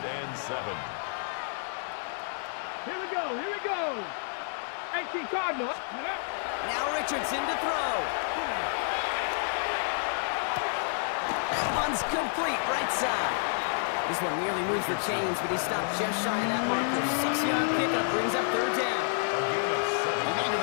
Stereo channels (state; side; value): silent; right; digital silence